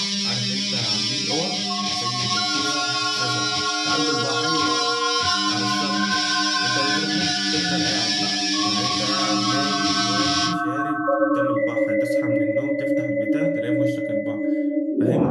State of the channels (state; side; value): identical; both; correlation 1.00